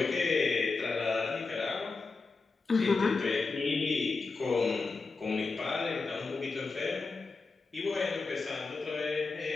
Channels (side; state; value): right; quieter; 4.1 dB